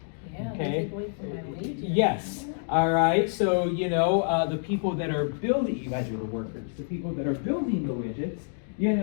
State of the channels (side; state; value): right; silent; digital silence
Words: Yeah, okay. they take away from my wages. Yes. All right. So the people that are building, you guys are the workers. The people that are building the widgets,